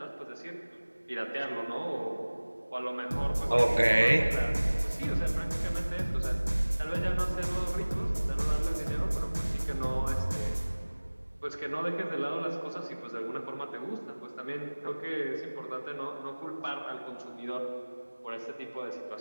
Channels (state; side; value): inverted; both; correlation -1.00